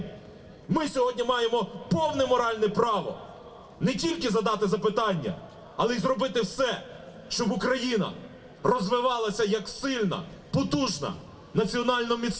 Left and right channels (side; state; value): both; identical; correlation 1.00